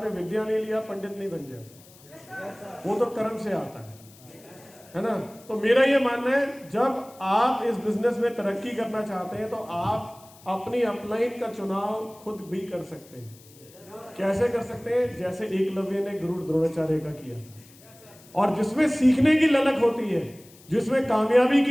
विद्या नहीं लिया, पंडित नहीं बन जाते, वो तो कर्म से आता है ना। तो मेरा ये मानना है, जब आप इस बिजनेस में तरक्की करना चाहते हैं तो आप अपनी अपलाइन का चुनाव खुद भी कर सकते हैं। कैसे कर सकते हैं? जैसे एकलव्य ने गुरु द्रोणाचार्य का किया था। और जिसमें सीखने की ललक होती है, जिसमें कामयाबी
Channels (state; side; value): noise; left; hiss, 24 dB below the sound